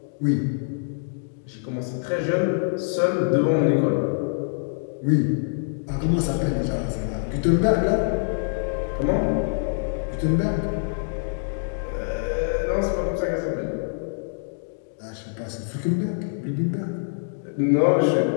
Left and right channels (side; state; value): right; silent; digital silence